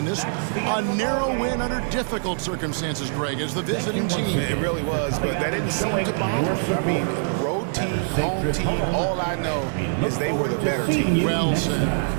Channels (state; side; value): silent; left; digital silence